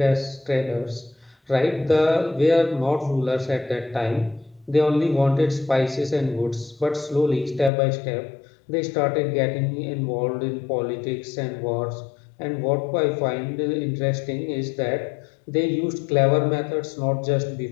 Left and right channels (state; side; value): drops out; right; at 7.7 s